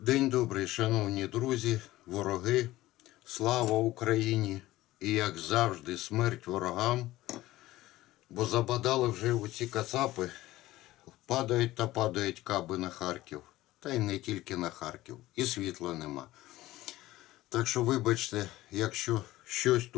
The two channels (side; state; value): right; quieter; 16.8 dB